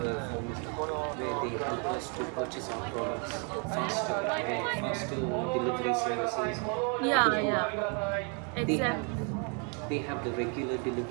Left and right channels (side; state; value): left; quieter; 37.5 dB